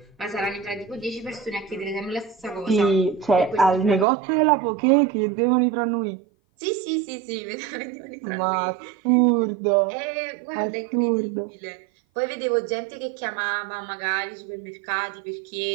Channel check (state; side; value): drops out; left; at 4.0 s